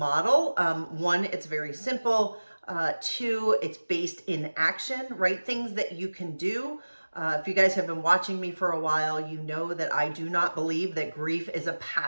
One, it's very simple. Two, it's based in action, right? Things that you can do. If you guys have been watching me for a while, you know that I do not believe that grief is a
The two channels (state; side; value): inverted; both; correlation -1.00